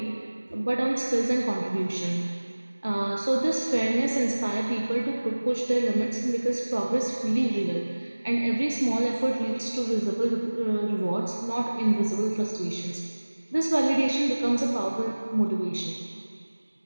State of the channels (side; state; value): both; inverted; correlation -1.00